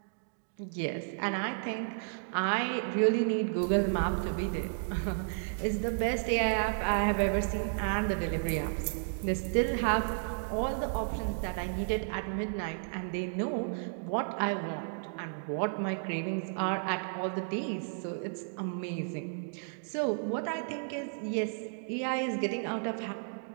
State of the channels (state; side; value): silent; left; digital silence